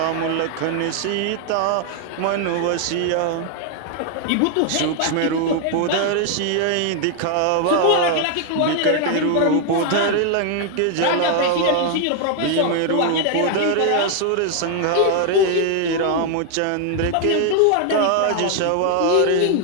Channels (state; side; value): different; both; correlation 0.00